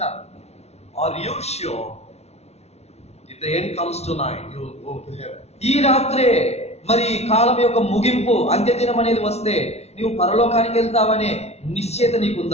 Are you sure if the end comes tonight, you will go to heaven? ఈ రాత్రే మరి కాలం యొక్క ముగింపు అంత్యదినం అనేది వస్తే నీవు పరలోకానికి వెళ్తావనే నిశ్చయత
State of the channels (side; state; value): right; late; 0.31 ms